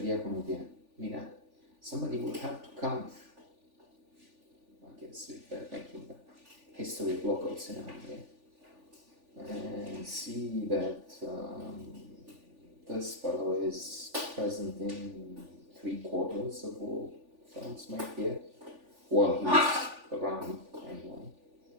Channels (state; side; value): late; left; 3.4 ms